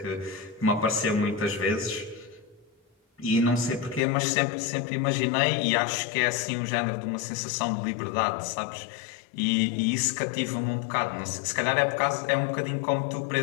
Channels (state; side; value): drops out; right; at 4.0 s